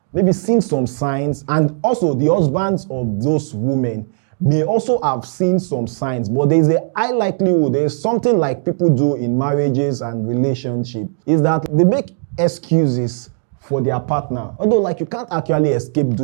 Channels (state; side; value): silent; left; digital silence